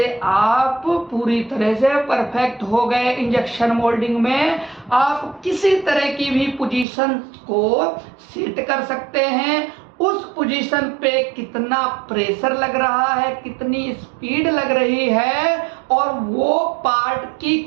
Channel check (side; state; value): left; drops out; at 6.9 s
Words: आप पूरी तरह से परफेक्ट हो गए। इंजेक्शन मोल्डिंग में आप किसी तरह की भी पोजीशन को सेट कर सकते हैं। उस पोजीशन पे कितना प्रेशर लग रहा है, कितनी स्पीड लग रही है, और वो पार्ट की